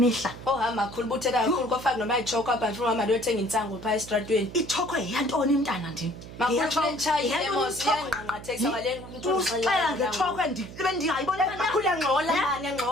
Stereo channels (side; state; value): right; noise; hum, 14 dB below the sound